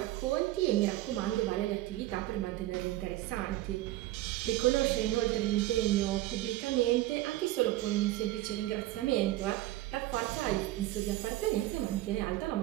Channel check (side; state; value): left; quieter; 16.3 dB